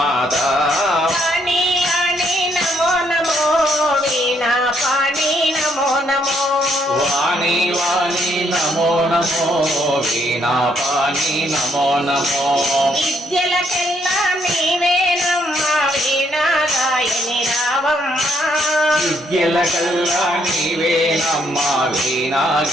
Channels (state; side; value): normal; both; correlation 0.71